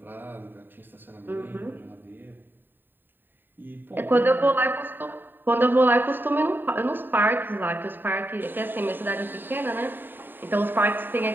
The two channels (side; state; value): left; late; 0.094 ms